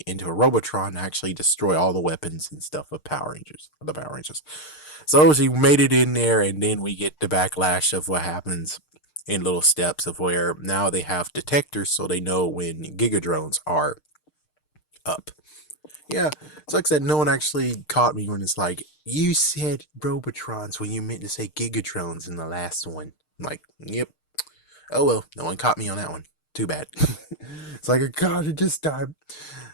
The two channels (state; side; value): late; right; 6.6 ms